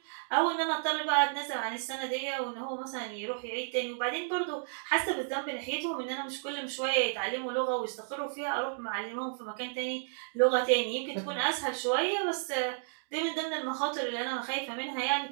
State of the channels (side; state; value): left; silent; digital silence